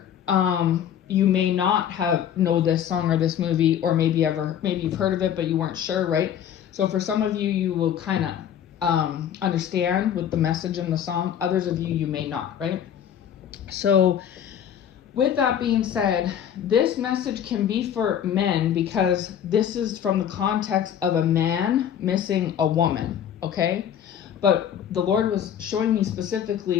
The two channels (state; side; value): quieter; right; 9.4 dB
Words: you may not know this song or this movie, or maybe you've heard of it but you weren't sure, right? So for some of you, you will kind of understand with the message in the song. Others of you may not, right? So with that being said, this message can be for men because this is from the context of a man missing a woman, okay? But the Lord was showing me